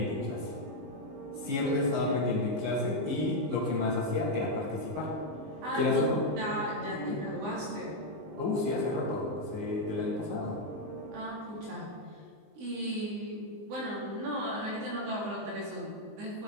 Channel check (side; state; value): left; late; 20 ms